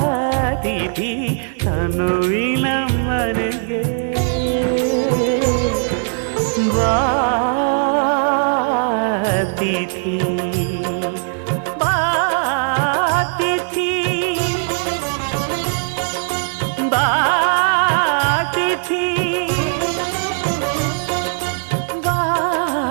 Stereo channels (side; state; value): left; silent; digital silence